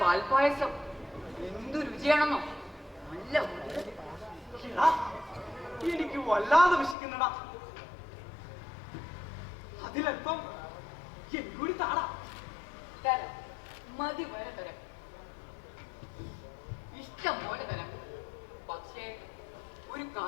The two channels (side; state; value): right; drops out; at 7.0 s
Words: പാൽപായസം. എന്തു രുചിയാണെന്നോ, നല്ല എനിക്ക് വല്ലാതെ വിശക്കുന്നടാ. അതിലൽപ്പം എനിക്കൂടി താടാ. തരാം, മതി വരെ തരാം, ഇഷ്ടം പോലെ തരാം. പക്ഷേ ഒരു